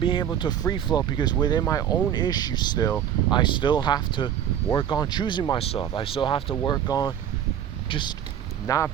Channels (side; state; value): left; quieter; 9.8 dB